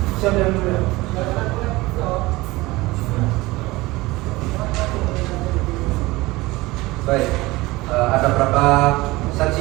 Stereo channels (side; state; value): left; quieter; 20.6 dB